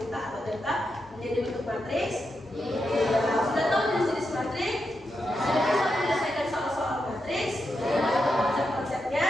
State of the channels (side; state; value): both; normal; correlation 0.86